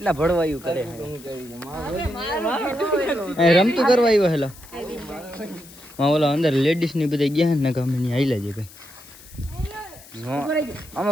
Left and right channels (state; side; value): noise; left; hiss, 20 dB below the sound